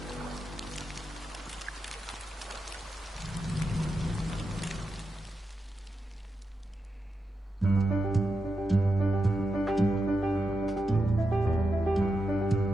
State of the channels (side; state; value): both; normal; correlation 0.88